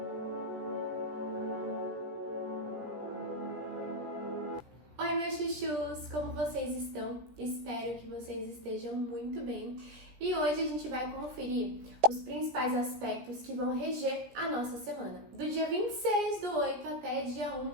Oi, meus chuchus! Como vocês estão? Espero que vocês estejam muito bem. E hoje a gente vai conferir os principais aspectos que vão reger a nossa semana. Do dia 26/8 até dia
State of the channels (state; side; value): late; left; 17 ms